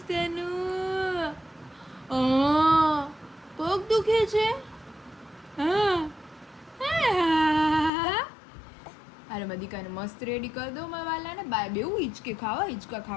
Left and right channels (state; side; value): drops out; right; at 7.9 s